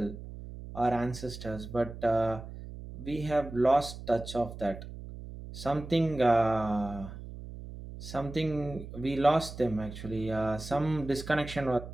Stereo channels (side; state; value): right; noise; hum, 12 dB below the sound